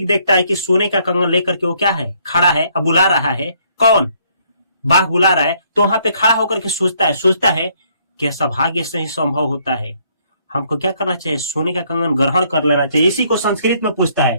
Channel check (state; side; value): inverted; both; correlation -0.67